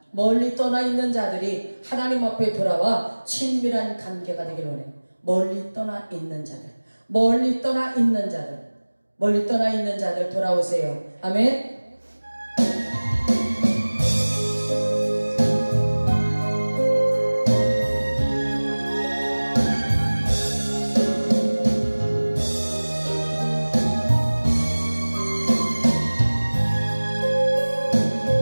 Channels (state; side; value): inverted; both; correlation -1.00